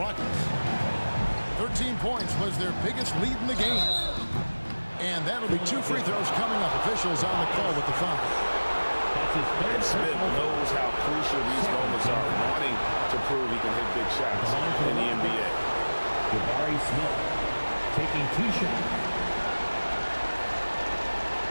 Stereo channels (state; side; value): inverted; both; correlation -1.00